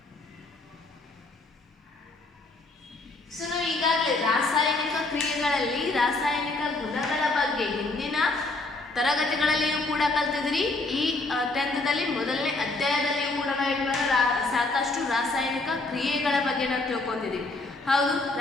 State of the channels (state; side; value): quieter; right; 3.2 dB